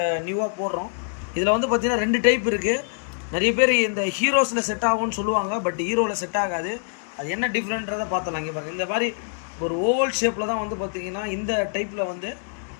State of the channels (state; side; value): silent; right; digital silence